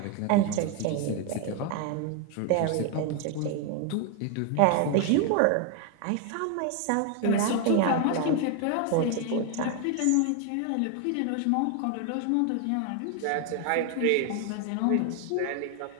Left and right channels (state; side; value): different; both; correlation 0.01